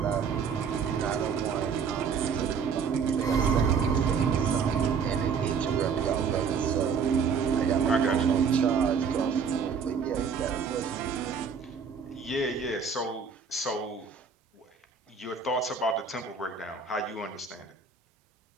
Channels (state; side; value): quieter; left; 6.0 dB